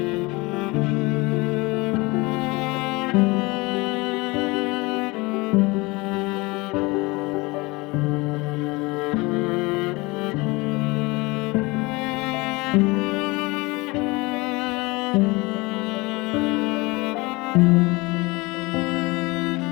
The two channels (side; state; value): right; quieter; 24.1 dB